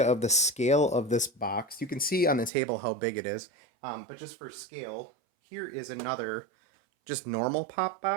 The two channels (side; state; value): left; drops out; at 2.5 s